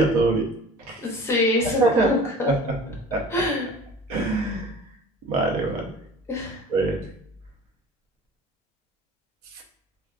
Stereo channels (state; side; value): normal; both; correlation 0.43